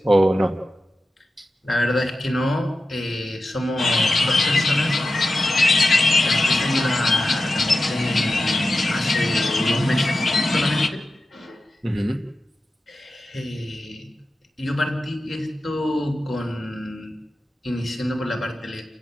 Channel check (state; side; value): normal; both; correlation 0.93